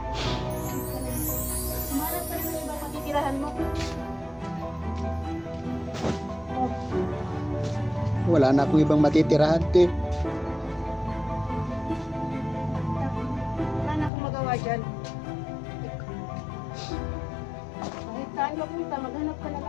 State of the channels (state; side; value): drops out; right; at 14.1 s